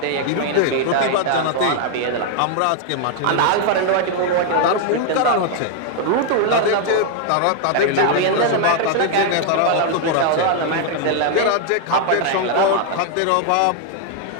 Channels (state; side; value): different; both; correlation 0.00